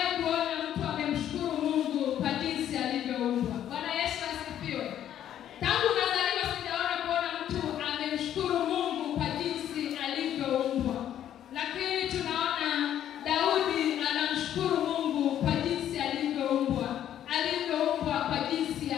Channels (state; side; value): quieter; right; 10.8 dB